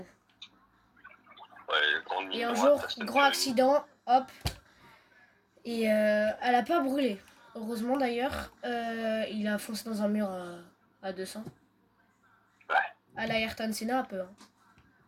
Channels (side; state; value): both; identical; correlation 1.00